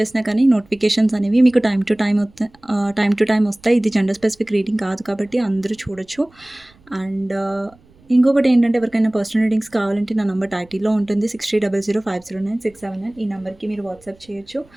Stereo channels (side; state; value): right; noise; rumble, 29 dB below the sound